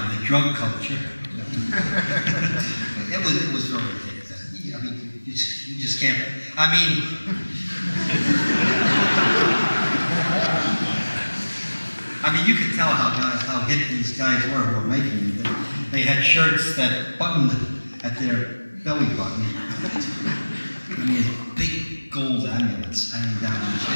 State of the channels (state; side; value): inverted; both; correlation -1.00